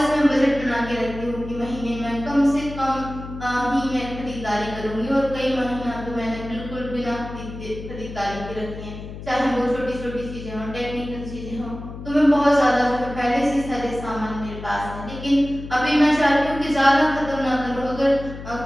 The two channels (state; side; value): noise; left; hum, 11 dB below the sound